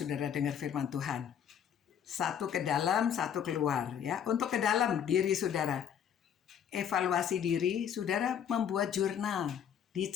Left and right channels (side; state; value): right; quieter; 8.7 dB